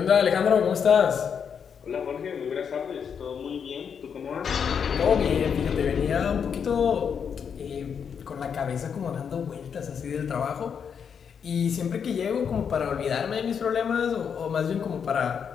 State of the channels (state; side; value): quieter; right; 7.1 dB